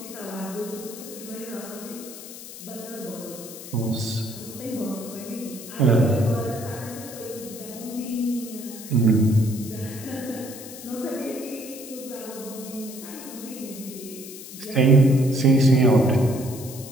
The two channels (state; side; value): noise; left; hiss, 13 dB below the sound